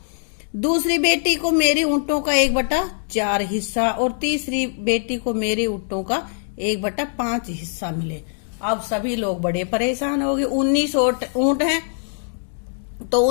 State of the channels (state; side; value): silent; right; digital silence